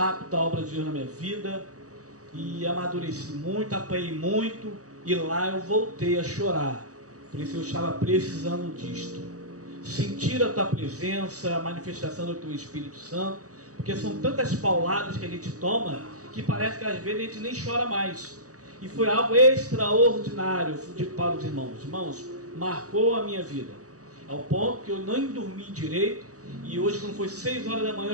a obra de Deus na minha vida, e amadureci muito, apanhei muito, e lá eu voltei a chorar. Por isso eu estava precisando disto. Sentir a tua presença, a manifestação do teu Espírito Santo, porque são tantas pauladas que a gente toma, que parece que às vezes a gente nem chora mais. E foi algo extraordinário para os irmãos. Irmãos, marcou a minha vida, ao ponto que eu nem dormi direito. E hoje, quando foi 6 horas da manhã, eu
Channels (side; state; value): left; late; 0.66 ms